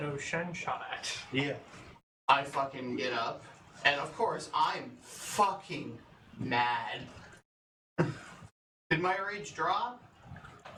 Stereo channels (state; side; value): identical; both; correlation 1.00